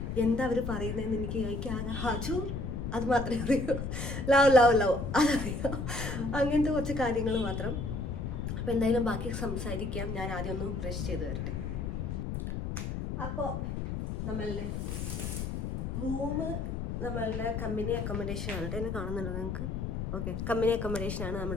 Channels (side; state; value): left; noise; rumble, 3 dB below the sound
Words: എന്താ അവർ പറയുന്നതെന്ന് എനിക്ക് ആകെ ഹജു അത് മാത്രമേ അറിയൂ, ലവ് അതറിയാം, അങ്ങനത്തെ കുറച്ച് കാര്യങ്ങൾ മാത്രം. അപ്പോൾ എന്തായാലും ബാക്കി സംസാരിക്കാം. ഞാൻ ആദ്യം ഒന്ന് ബ്രഷ് ചെയ്ത് വരട്ടെ. അപ്പോൾ നമ്മളുടെ റൂമ് നമ്മളുടെ കമ്പനി അക്കോമഡേഷൻ ആണ്. എന്നെ കാണുന്നുണ്ടോ നിങ്ങൾക്ക്? ഓക്കെ, കമ്പനി അക്കോമഡേഷൻ ആണ്